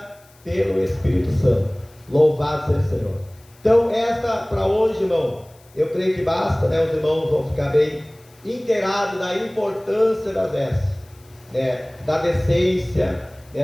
pelo Espírito Santo. Louvado seja o Senhor. Então, esta para hoje, irmão, eu creio que basta, né? Os irmãos vão ficar bem inteirados da importância das vestes, né? Da decência,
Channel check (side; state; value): left; noise; hiss, 29 dB below the sound